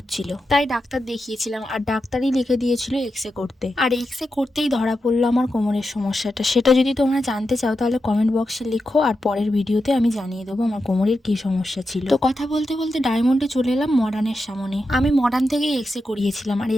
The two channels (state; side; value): normal; both; correlation 0.88